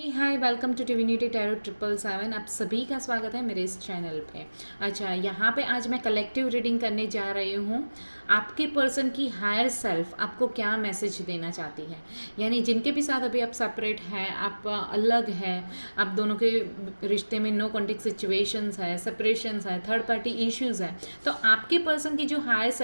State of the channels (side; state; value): both; inverted; correlation -1.00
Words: welcome to divinity tarot 777। आप सभी का स्वागत है मेरे इस चैनल पे। अच्छा, यहाँ पे आज मैं कलेक्टिव रीडिंग करने जा रही हूँ। आपके पर्सन की हायर सेल्फ आपको क्या मैसेज देना चाहती है, यानी जिनके भी साथ अभी आप सेपरेट हैं, आप अलग हैं, आप दोनों के रिश्ते में नो कॉन्टेक्ट सिचुएशंस है, सेपरेशंस है, थर्ड पार्टी इश्यूज है, तो आपके पर्सन की जो हायर